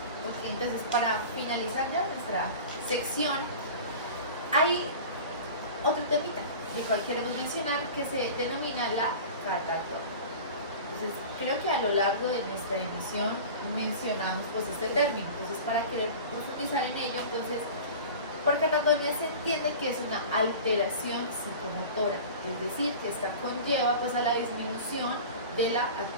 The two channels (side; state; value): both; inverted; correlation -0.36